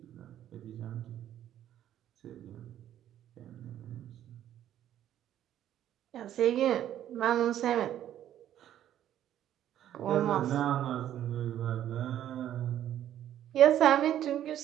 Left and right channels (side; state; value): left; quieter; 11.4 dB